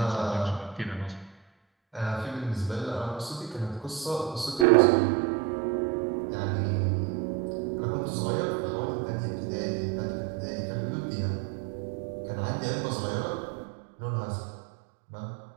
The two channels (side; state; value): left; drops out; at 4.7 s